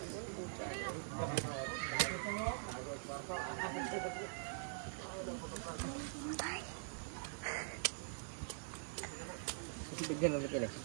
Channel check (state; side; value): silent; left; digital silence